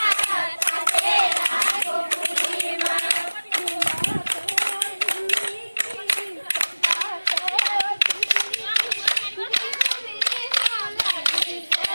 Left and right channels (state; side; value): inverted; both; correlation -1.00